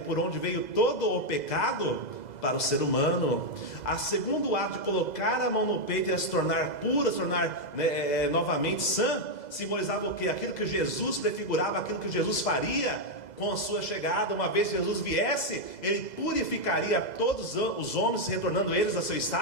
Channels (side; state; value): right; late; 2.0 ms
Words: por onde veio todo o pecado para o ser humano. A segundo ato de colocar a mão no peito e ela se tornar pura, se tornar novamente sã, simbolizava o que? Aquilo que Jesus prefigurava, aquilo que Jesus faria com a sua chegada. Uma vez que Jesus viesse, ele purificaria todos os homens, retornando eles a seu